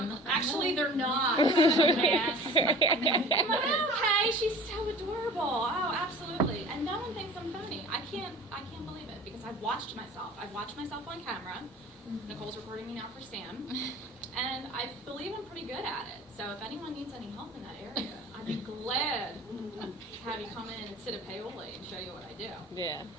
actually, they're not. I'm like, oh, okay, she's so adorable. Oh, absolutely. And no one thinks I'm funny. I can't believe it because I've watched myself. I've watched myself on camera. Nicole's recording me now for Sam. And I believe I'm pretty good at it. So if anyone needs any help in that area, I'd be glad to have you come in and sit at Paoli and show you what I do. Yeah.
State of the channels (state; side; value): normal; both; correlation 0.43